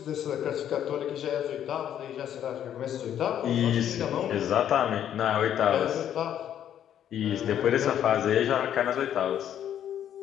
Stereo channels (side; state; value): right; quieter; 10.2 dB